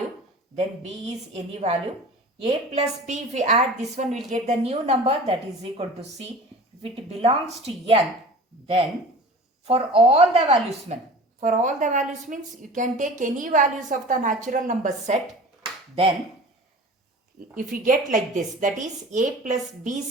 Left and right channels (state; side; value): normal; both; correlation 0.40